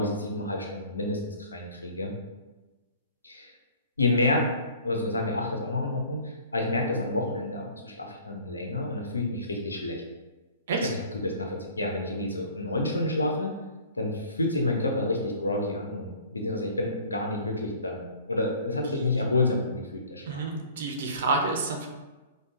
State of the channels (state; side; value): inverted; both; correlation -0.50